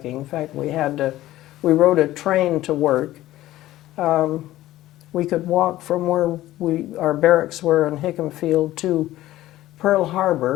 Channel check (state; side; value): quieter; right; 15.3 dB